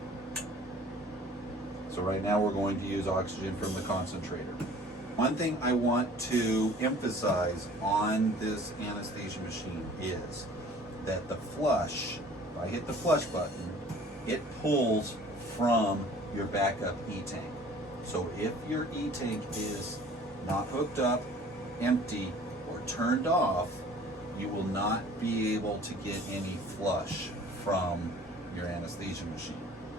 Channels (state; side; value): normal; both; correlation 0.49